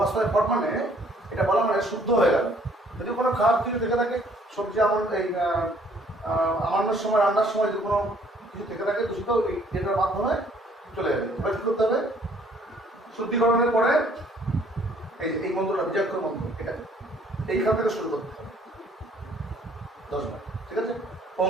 ফট মানে এটা বলা মানে শুদ্ধ হয়ে গেল। যদি কোনো খারাপ কিছু থেকে থাকে, সবজি এই আমান্নর সময় রান্নার সময় যদি কোনো কিছু থেকে থাকে দূষিত, এটার মাধ্যমে চলে যাবে। এবার কি করতে হবে, শুদ্ধিকরণের পরে এই মন্ত্রটা বিজাক্ষর মন্ত্র, এটা এইখান থেকে শুরু করতে হবে 10 বার। ঠিক আছে,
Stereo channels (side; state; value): both; normal; correlation 0.61